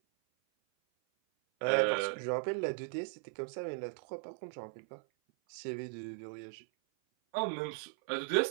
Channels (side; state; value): left; silent; 53 dB below the other